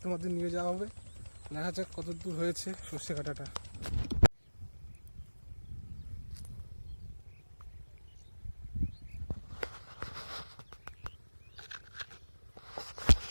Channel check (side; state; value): both; inverted; correlation -1.00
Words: তোমাদের নিয়ে যাওয়া হবে। দেখা যাক কত দূর হয়েছে সর্ষে কাটাটা।